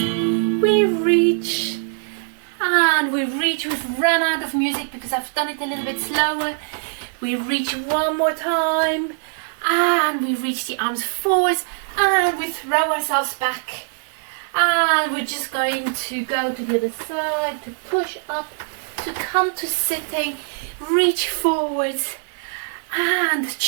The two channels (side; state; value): left; silent; 56 dB below the other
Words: we reach, we've run out of music because I've done it a little bit slower. We reach one more time, and we reach the arms forwards, and we throw ourselves back, and we're just going to go to the other side, to push up, to come to sitting, reach forwards, and